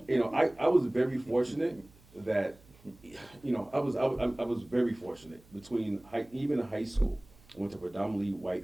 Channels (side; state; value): right; noise; hum, 26 dB below the sound